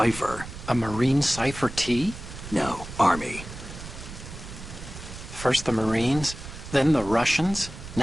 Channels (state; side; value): noise; right; rumble, 12 dB below the sound